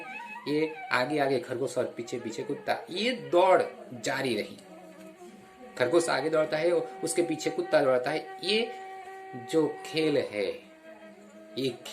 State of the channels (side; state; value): both; identical; correlation 1.00